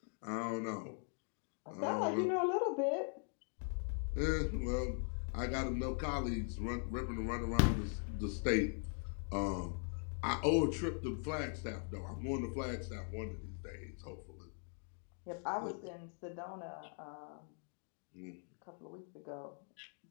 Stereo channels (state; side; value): silent; right; 50 dB below the other